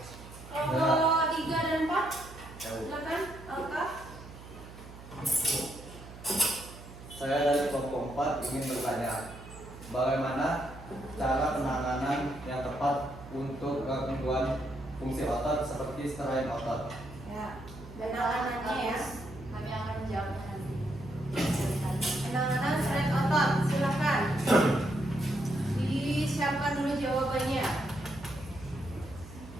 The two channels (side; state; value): right; noise; hum, 16 dB below the sound